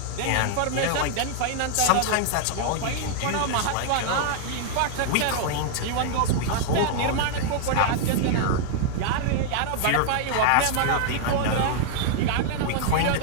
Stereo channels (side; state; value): both; different; correlation -0.01